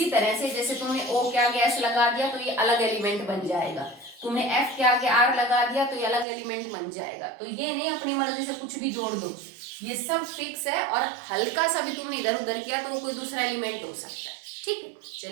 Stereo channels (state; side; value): drops out; left; at 6.2 s